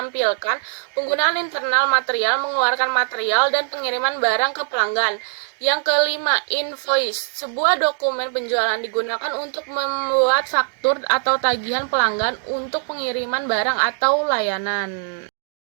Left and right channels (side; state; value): left; silent; 58 dB below the other